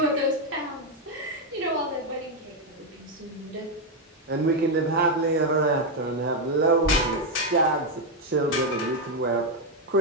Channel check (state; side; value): normal; both; correlation 0.04